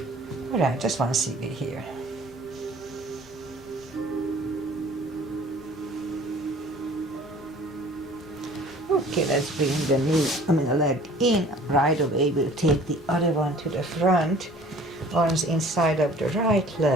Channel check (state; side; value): normal; both; correlation 0.50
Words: All right, just 1 CB here. Okay, let's bring the leg in. Right away, we'll take the other one to the front. Arms inside of the right